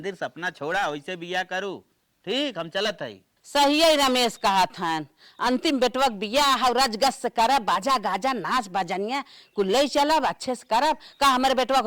सपना छोड़ा, वैसे बियाह करू। ठीक हम चलत है। सही है रमेश कहा था, अंतिम बेटवक बियाह और रजगस से करब, बाजा गाजा नाच बजनिया कुल ले चलब, अच्छे से करब। का हमारे बेटवक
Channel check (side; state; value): both; identical; correlation 1.00